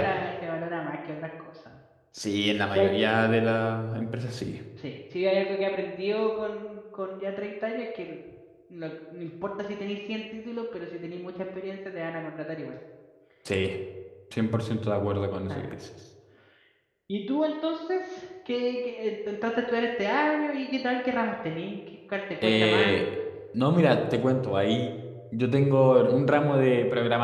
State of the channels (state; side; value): identical; both; correlation 1.00